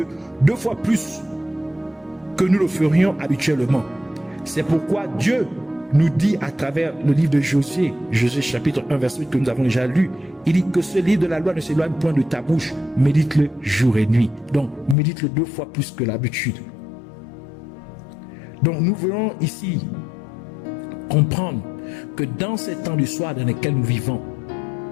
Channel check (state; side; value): drops out; right; at 15.0 s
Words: 2 fois plus que nous le ferions habituellement. C'est pourquoi Dieu nous dit à travers le livre de Josué chapitre 1 verset 8 que nous avons déjà lu, il dit que ce livre de la loi ne s'éloigne point de ta bouche, médite-le jour et nuit. Donc médite-le 2 fois plus que l'habitude. Donc nous voulons ici comprendre que dans ces temps du soir dans lesquels nous vivons,